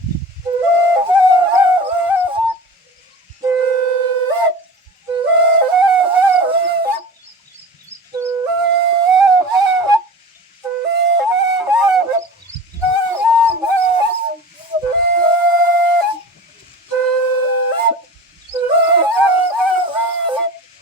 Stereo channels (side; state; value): both; normal; correlation 0.35